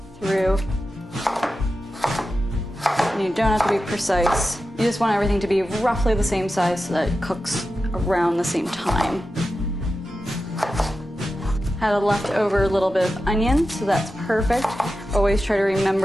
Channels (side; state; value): both; normal; correlation 0.92